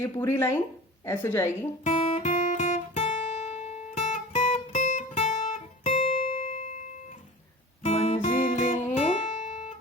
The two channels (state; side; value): normal; both; correlation 0.37